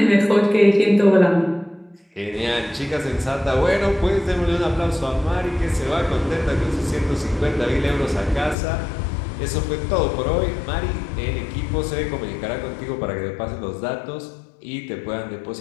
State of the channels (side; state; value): right; drops out; at 8.6 s